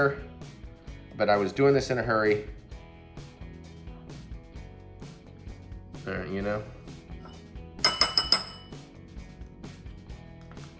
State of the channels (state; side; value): identical; both; correlation 1.00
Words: But I was doing this in a hurry. You know?